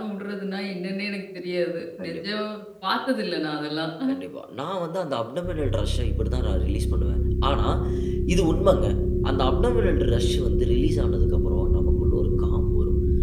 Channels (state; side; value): identical; both; correlation 1.00